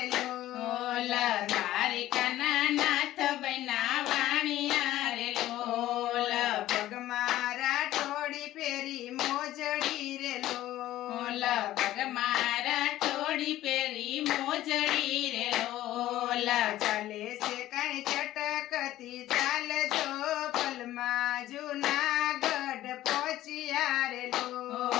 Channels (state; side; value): quieter; right; 14.5 dB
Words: લોલ દ્વારિકાના નાથ બનાવાણિયા રે લોલ. પગ મારા ટોળી પહેરી મોજડી રે લોલ પગ મારા ટોળી પહેરી મોજડી રે લોલ. ચાલે છે કઈ ચટકતી ચાલજો પલમાં જૂનાગઢ પહોંચ્યા રે